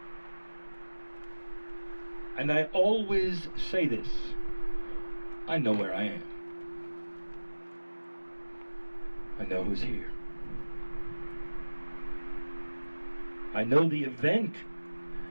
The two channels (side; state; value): both; inverted; correlation -1.00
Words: And I always say this: I know where I am. I know who's here. I know the event